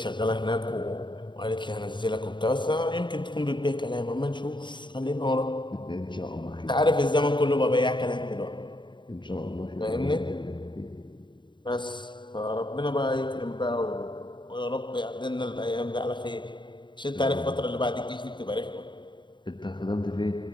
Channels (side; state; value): right; late; 0.23 ms